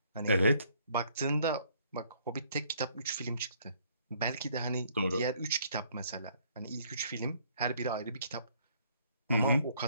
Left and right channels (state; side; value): inverted; both; correlation -0.64